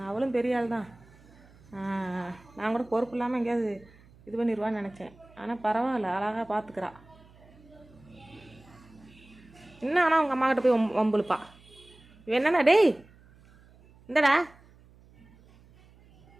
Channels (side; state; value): right; noise; hum, 26 dB below the sound